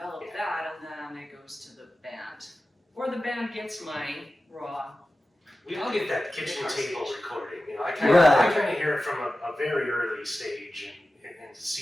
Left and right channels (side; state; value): both; normal; correlation 0.95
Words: that, and then it goes to the band, or the band gets my raw. we all get that kitchen table recording. You know, I Right. kind of hear it from a very early stage and